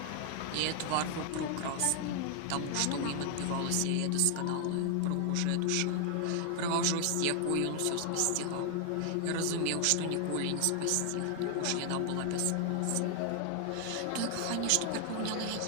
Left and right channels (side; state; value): both; different; correlation 0.00